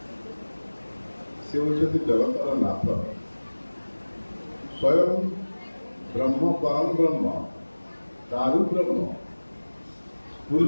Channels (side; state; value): both; inverted; correlation -1.00